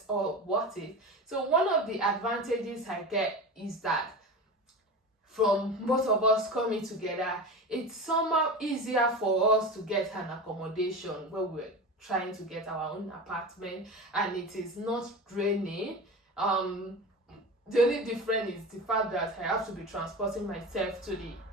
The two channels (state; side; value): normal; both; correlation 0.28